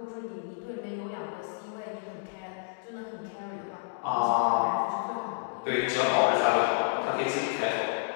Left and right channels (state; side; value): silent; right; digital silence